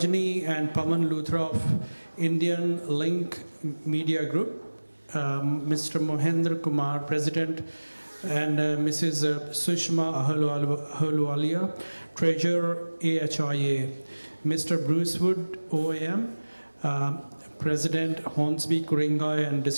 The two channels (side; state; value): both; inverted; correlation -1.00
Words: and Pawan Luthra of Indian Link Media Group, Mr. Mohendra Kumar, President, and Mrs. Sushma Ahluwalia, Treasurer, AHIA, Mr. Bruce Wood, OAM, President, Hornsby, Kuringai and